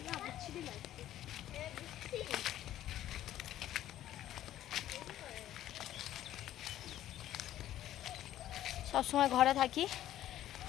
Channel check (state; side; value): quieter; right; 12.7 dB